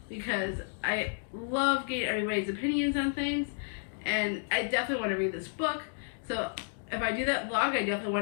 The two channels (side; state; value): right; silent; digital silence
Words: because I love getting everybody's opinions on things, and I definitely want to read this book. So if I do that vlog, I definitely